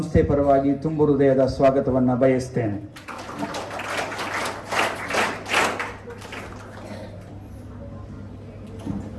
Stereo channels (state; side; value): identical; both; correlation 1.00